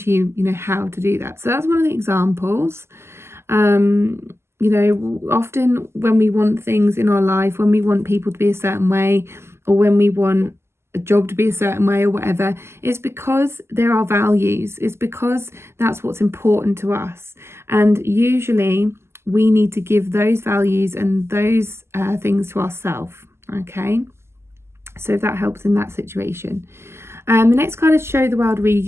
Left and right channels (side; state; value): left; late; 0.12 ms